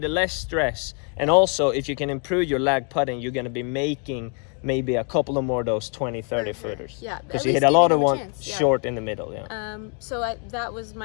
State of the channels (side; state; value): right; quieter; 38.8 dB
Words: less stress. And also, if you can improve your lag putting, you're going to be making maybe a couple of more of those 20-30 footers. Yeah, because you hit a lot of one short in the middle. That was